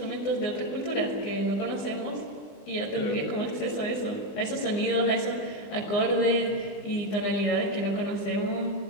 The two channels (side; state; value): right; late; 20 ms